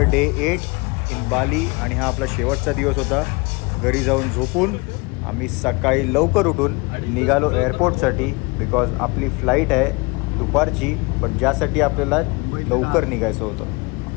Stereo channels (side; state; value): right; quieter; 27.2 dB